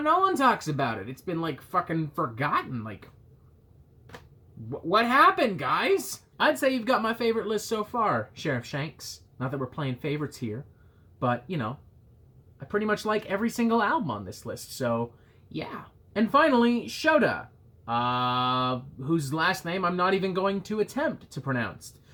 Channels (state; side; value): identical; both; correlation 1.00